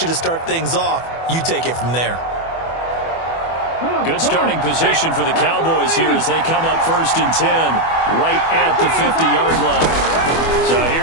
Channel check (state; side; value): late; right; 24 ms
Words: you to start things off. You take it from there. Good starting position for the Cowboys here as they come up 1st and 10 right at the 50-yard line. So